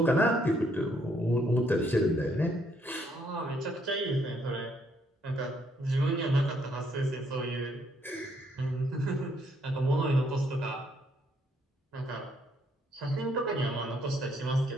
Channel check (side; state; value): both; normal; correlation 0.70